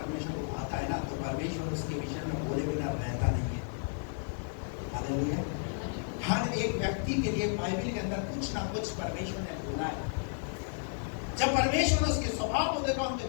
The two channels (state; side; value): silent; right; 56 dB below the other